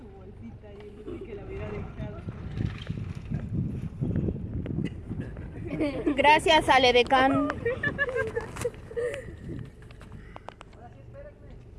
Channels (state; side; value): identical; both; correlation 1.00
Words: bolsita y él dice que la hubiera dejado. Gracias, Ale Decán.